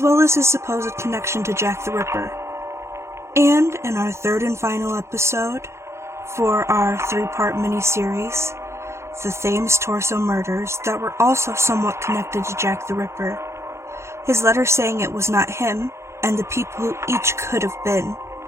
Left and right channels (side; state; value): left; late; 0.13 ms